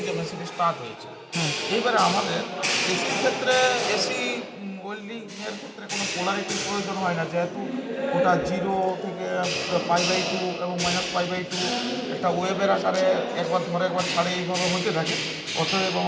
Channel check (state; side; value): identical; both; correlation 1.00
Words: যে মেশিন স্টার্ট হয়েছে। এইবারে আমাদের এসির ক্ষেত্রে, এসি ওয়েল্ডিং এর ক্ষেত্রে কোনো পোলারিটির প্রয়োজন হয় না, যেহেতু ওটা 0 থেকে π/2 এবং -π/2 একটা ওয়েবের আকারে একবার ধরে একবার ছাড়ে এইভাবে হতে থাকে। অতএব